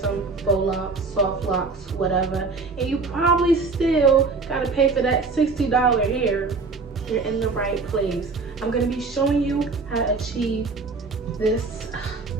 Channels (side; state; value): left; quieter; 4.1 dB